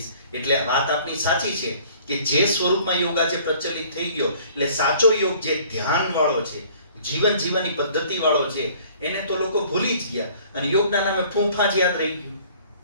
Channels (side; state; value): both; inverted; correlation -0.53